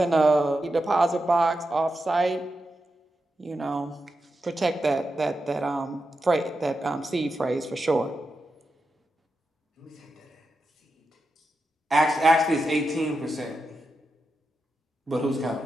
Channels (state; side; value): normal; both; correlation 0.88